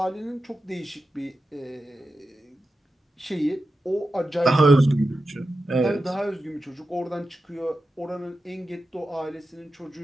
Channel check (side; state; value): both; normal; correlation 0.91